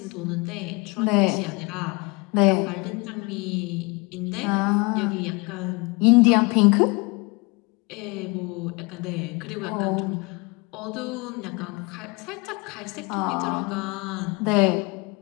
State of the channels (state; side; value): quieter; right; 27.9 dB